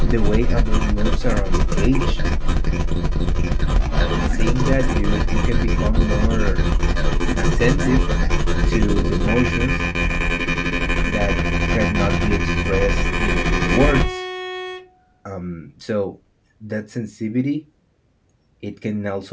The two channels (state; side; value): identical; both; correlation 1.00